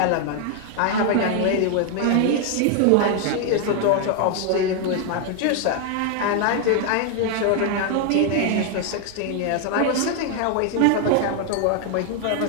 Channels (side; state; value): both; different; correlation 0.01